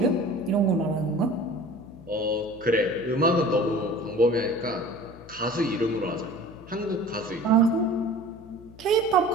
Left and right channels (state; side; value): noise; left; hum, 20 dB below the sound